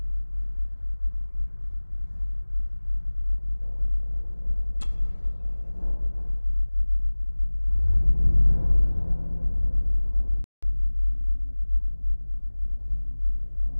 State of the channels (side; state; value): both; inverted; correlation -1.00